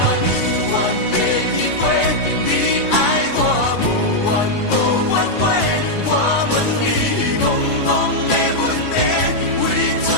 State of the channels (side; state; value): right; late; 3.5 ms